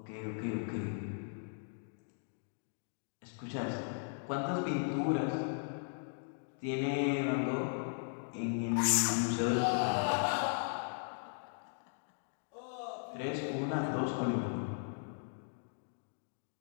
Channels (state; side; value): silent; right; digital silence